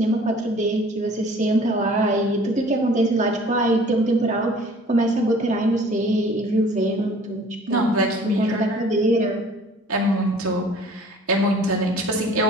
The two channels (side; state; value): both; normal; correlation 0.51